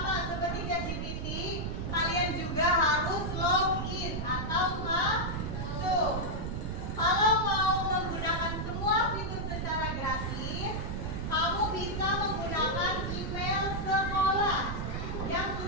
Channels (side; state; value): right; noise; rumble, 3 dB below the sound